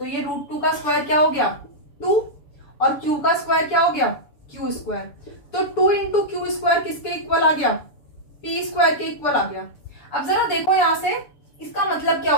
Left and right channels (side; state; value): right; late; 7.0 ms